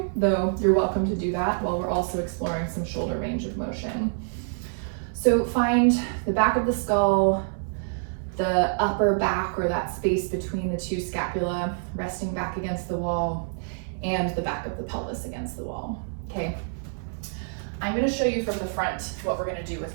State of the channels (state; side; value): silent; left; digital silence